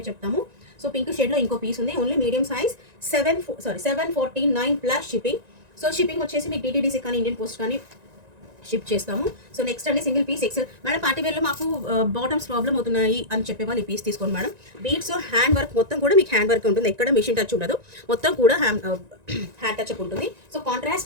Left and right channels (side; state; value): left; late; 1.9 ms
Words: చెప్తాము. సో పింక్ షేడ్ లో ఇంకో పీస్ ఉంది. Only medium size 749 plus shipping. So shipping వచ్చేసి మీకు డిటీడీసీ కానీ ఇండియన్ పోస్ట్ కానీ షిప్ చేస్తాము. సో నెక్స్ట్ అండి single piece excel madam. Party వేర్లో మాకు బాటమ్స్ ప్రాబ్లమ్ అవుతున్నాయి అని చెప్పే వాళ్ళు ఈ పీస్ తీసుకోండి మేడం. బీడ్స్ హ్యాండ్ వర్క్ మొత్తం కూడా మీకు హ్యాండ్ వర్క్ ఉంటుంది, ఎక్కడ మిషన్ టచ్ ఉండదు, మొత్తం కూడా హ్యాండ్ టచ్ అప్ ఉంటుంది. సో